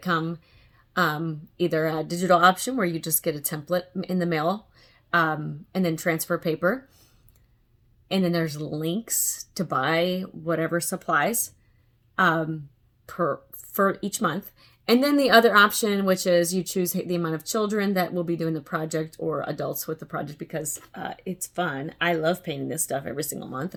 come either a digital option where you just get a template in the mail, and then transfer paper. And then there's links to buy whatever supplies for each month. And then the other option, which is you choose the amount of children that will be doing the project or adults with the project, because it's fun. I love painting this stuff every single month,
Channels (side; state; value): both; identical; correlation 1.00